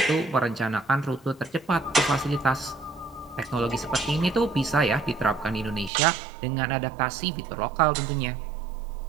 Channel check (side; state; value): left; drops out; at 5.9 s